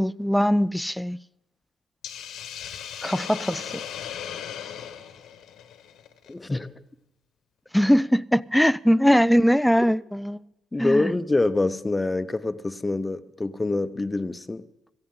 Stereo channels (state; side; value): normal; both; correlation 0.98